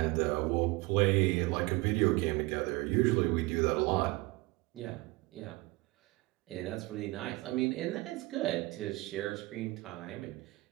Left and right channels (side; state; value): left; quieter; 22.3 dB